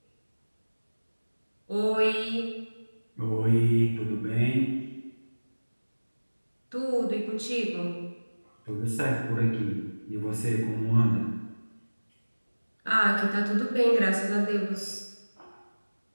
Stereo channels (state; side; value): inverted; both; correlation -1.00